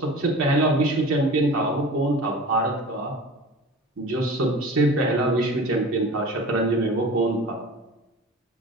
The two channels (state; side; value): normal; both; correlation 0.38